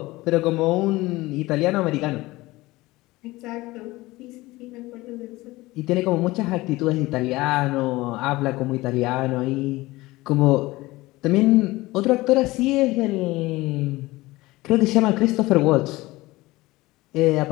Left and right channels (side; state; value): right; quieter; 19.7 dB